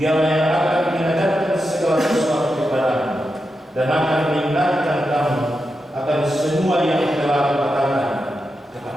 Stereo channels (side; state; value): both; normal; correlation 0.88